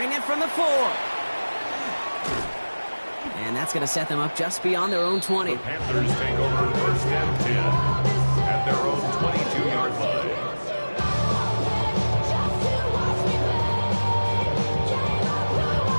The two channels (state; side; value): inverted; both; correlation -1.00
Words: it from the 4. And that's going to set them up just beyond their own 20. The Panthers take over 1st and 10 at their own 22-yard line.